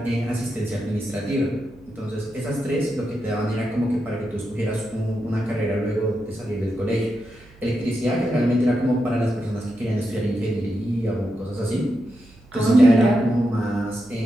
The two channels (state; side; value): noise; right; hum, 25 dB below the sound